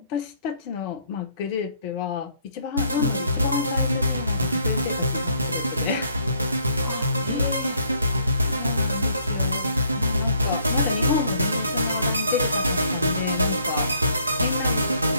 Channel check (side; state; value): both; inverted; correlation -0.67